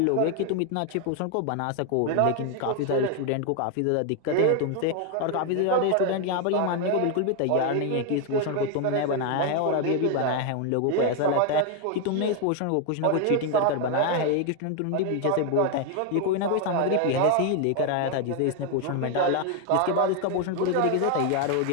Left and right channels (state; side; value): different; both; correlation 0.01